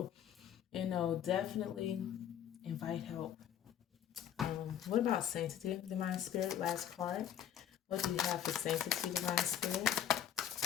you know, definitely invite help. What about sanctity, Divine Spirit? Last card. What do you have for sanctity, Divine Spirit?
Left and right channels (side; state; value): right; quieter; 9.9 dB